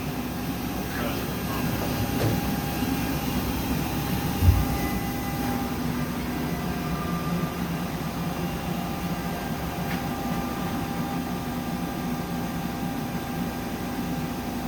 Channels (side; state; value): both; identical; correlation 1.00